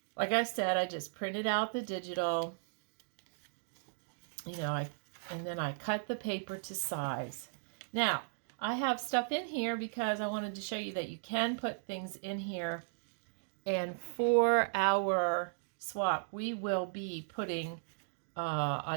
like I said, I just printed out the digital, and then I cut the paper to size. Now, I have stuff in here because I wanted to show you that you can put things in here. And for our swap, we will be putting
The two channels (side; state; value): left; silent; digital silence